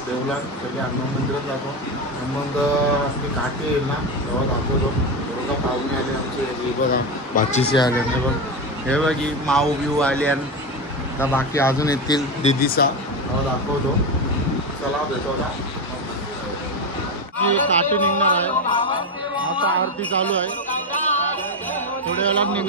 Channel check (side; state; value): both; normal; correlation 0.15